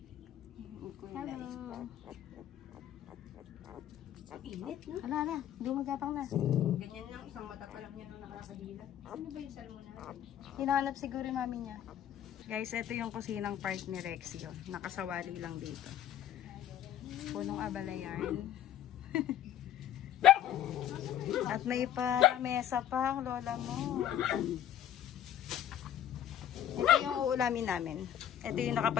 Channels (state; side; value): quieter; right; 10.9 dB